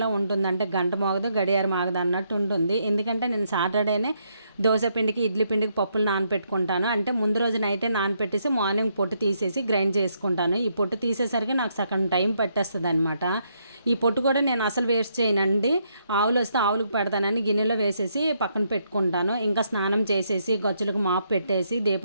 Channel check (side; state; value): both; inverted; correlation -0.76